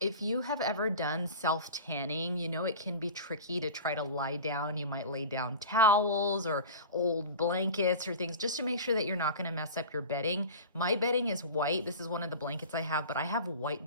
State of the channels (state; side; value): inverted; both; correlation -0.34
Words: If you have ever done self-tanning, you know it can be tricky to try to lie down. You might lay down towels or old blankets or things just to make sure that you're not going to mess up your bedding. My bedding is white. This is one of the blankets I have, but I have